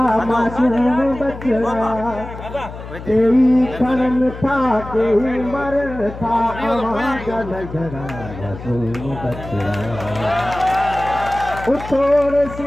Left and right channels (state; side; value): noise; left; hum, 12 dB below the sound